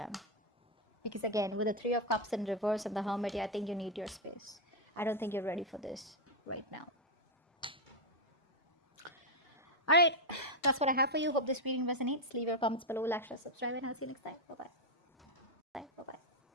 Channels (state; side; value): normal; both; correlation 0.01